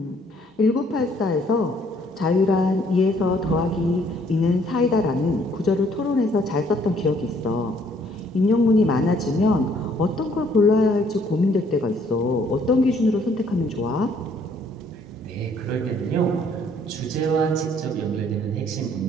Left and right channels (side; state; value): both; normal; correlation 0.63